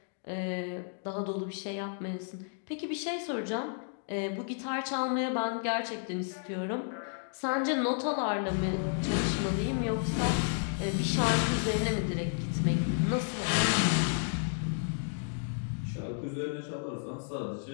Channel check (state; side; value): silent; right; digital silence